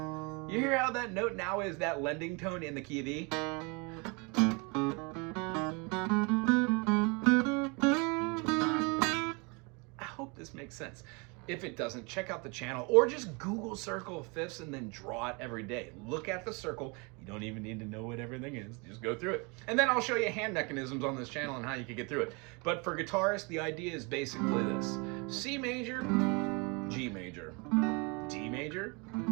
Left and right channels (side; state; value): left; quieter; 30.4 dB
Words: You hear how that note now is that lending tone in the key of E? I hope this makes sense. If it doesn't, check out the channel or just Google circle of fifths and then draw it every day. Look at the circle. You don't even need to know what everything is. Just go through it. And then I'll show you hand mechanisms on this channel and how you can get through it. But for guitarists, the idea is basically this. C major, G major, D major,